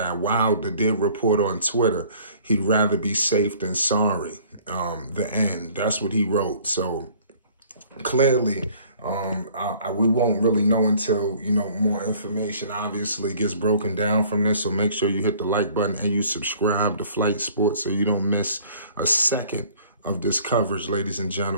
Wilder did report on Twitter he'd rather be safe than sorry. The end. That's what he wrote. So clearly, we won't really know until, more information obviously gets broken down from this. So make sure you hit the like button and you subscribe to Flight Sports so you don't miss a second of this coverage, ladies and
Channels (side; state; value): both; inverted; correlation -0.54